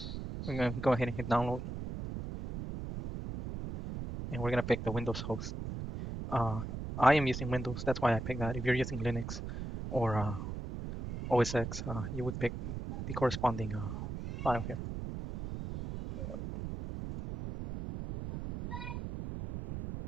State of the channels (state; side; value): noise; right; rumble, 6 dB below the sound